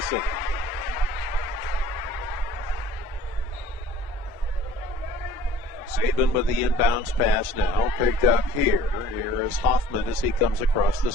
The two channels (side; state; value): both; normal; correlation 0.51